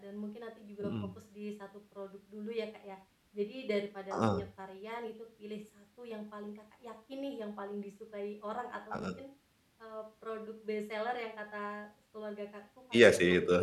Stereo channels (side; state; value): both; identical; correlation 1.00